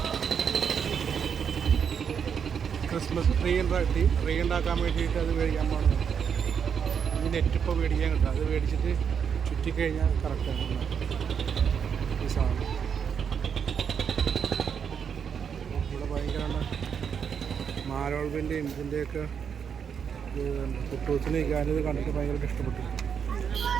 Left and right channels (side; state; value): left; quieter; 7.2 dB